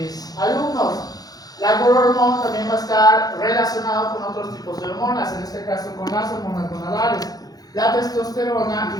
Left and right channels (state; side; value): late; right; 0.19 ms